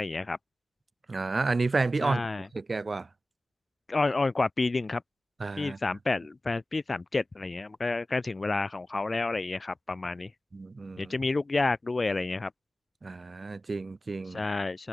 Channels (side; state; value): both; normal; correlation 0.95